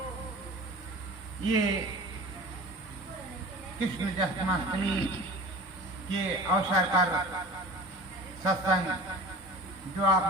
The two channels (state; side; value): normal; both; correlation 0.39